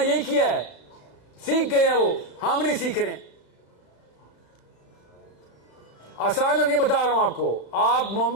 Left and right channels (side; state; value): right; late; 33 ms